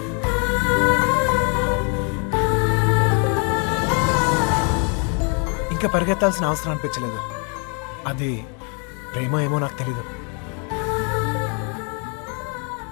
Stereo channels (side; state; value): right; quieter; 36.6 dB